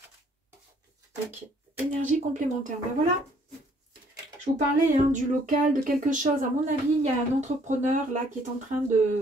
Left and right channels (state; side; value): normal; both; correlation 0.63